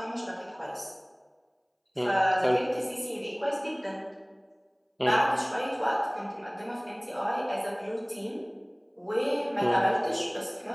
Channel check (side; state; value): both; identical; correlation 1.00